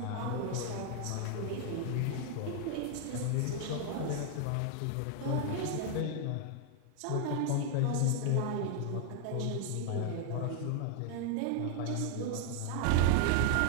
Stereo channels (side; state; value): both; different; correlation 0.00